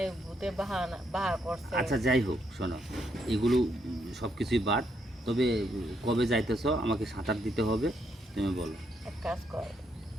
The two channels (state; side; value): normal; both; correlation 0.76